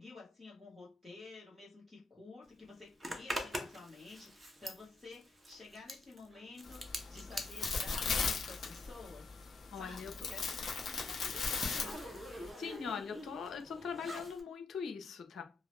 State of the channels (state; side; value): quieter; right; 3.7 dB